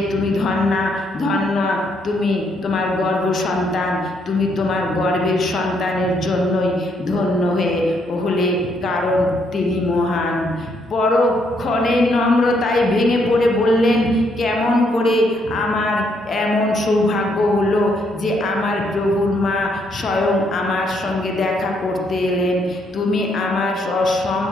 তুমি ধন্যা, তুমি তোমার গর্ভ সন্তান, তুমি তোমার গর্ভের সন্তানের জন্যই ধন্য হলে, কারণ তিনি মহান। পরক্ষণে নম্রতায় ভেঙে পড়ে বললেন, কেমন করে আমার এমন সৌভাগ্য হলো যে আমার প্রভুর মা স্বয়ং আমার সঙ্গে দেখা করতে এলেন। তুমি আমার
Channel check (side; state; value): both; normal; correlation 0.73